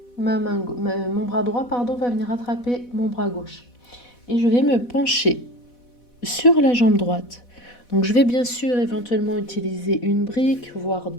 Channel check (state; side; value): late; right; 4.1 ms